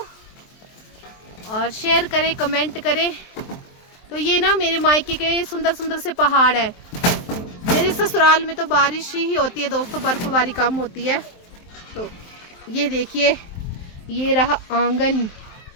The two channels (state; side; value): late; right; 23 ms